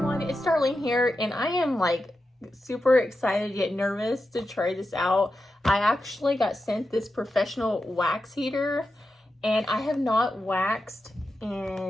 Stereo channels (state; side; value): normal; both; correlation 0.90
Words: it's Darlene here, and I am like super excited yet nervous to try this out. I actually got sent this professional wax heater, and I have not waxed